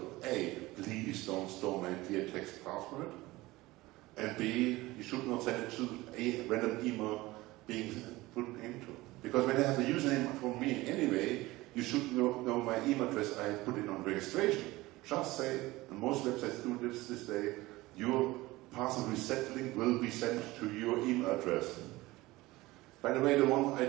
A, please don't store my clear text password. And B, you should not send it to a random email being put into. Because when I have a username from me anyway, you should know my email address I put in on registration. Just say, and most websites do this day, your password reset link will be sent to your email address. By the way, the one I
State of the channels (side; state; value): left; quieter; 19.5 dB